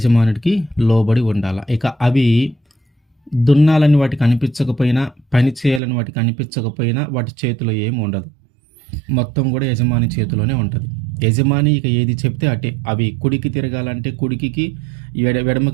ఇక అవి దున్నాలని వాటికి అనిపించకపోయినా, పని చేయాలని వాటికి అనిపించకపోయినా వాటి చేతిలో ఏమి ఉండదు. మొత్తం కూడా యజమాని చేతిలోనే ఉంటుంది. యజమాని ఇక ఏది చెప్తే అటే. అవి కుడికి తిరగాలంటే కుడికి,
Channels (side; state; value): left; drops out; at 5.8 s